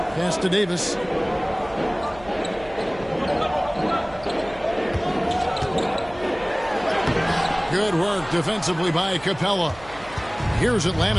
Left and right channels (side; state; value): right; noise; hum, 20 dB below the sound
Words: Pass to Davis. Good work defensively by Capella. Here's